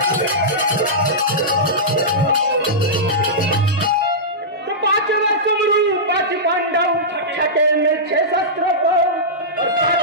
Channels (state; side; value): normal; both; correlation -0.13